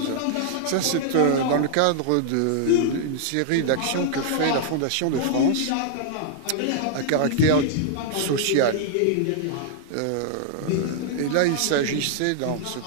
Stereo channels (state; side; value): different; both; correlation -0.01